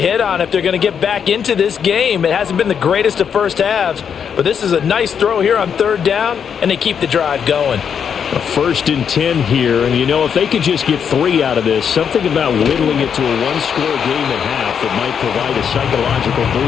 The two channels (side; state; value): right; quieter; 7.5 dB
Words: hit on if they're going to get back into this game. It hasn't been the greatest of first halves, but this is a nice throw here on third down, and they keep the drive going. A 1st and 10 here, and if they could just get 3 out of this, something about whittling it to a one-score game at half that might provide a psychological